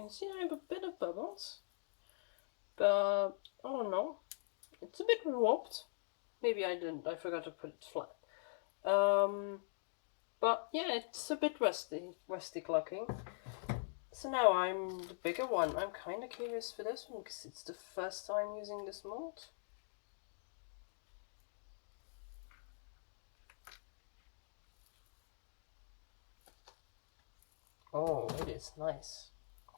see I have a bit of bubbles, but I don't know, it's a bit warped. Maybe I forgot to put it flat. But yeah, it's a bit rustic looking. So now I'm the bigger one. I'm kind of curious for this one because it's the first time using this mold. Oh, it is nice.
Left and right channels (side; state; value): right; silent; digital silence